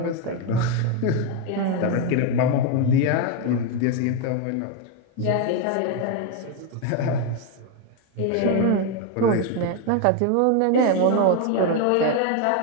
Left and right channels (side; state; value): both; different; correlation 0.01